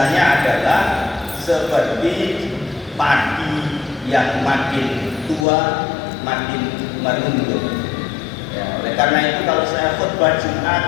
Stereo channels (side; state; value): right; drops out; at 5.5 s